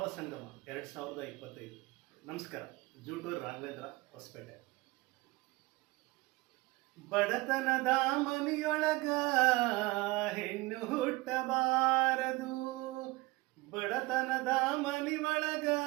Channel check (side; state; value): left; quieter; 22.0 dB